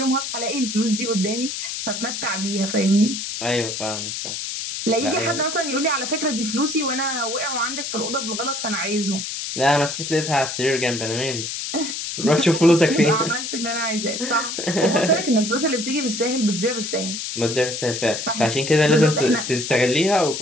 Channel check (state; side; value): noise; left; hiss, 5 dB below the sound